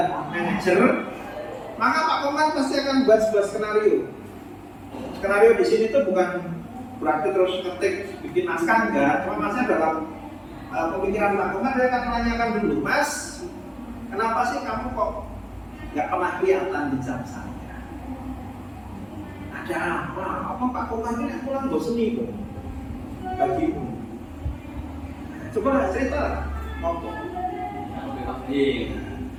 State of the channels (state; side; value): identical; both; correlation 1.00